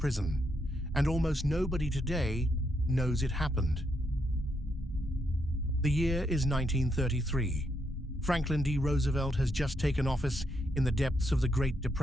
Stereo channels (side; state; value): both; normal; correlation 0.79